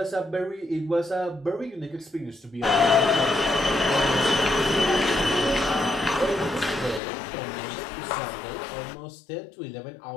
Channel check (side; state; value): right; drops out; at 7.0 s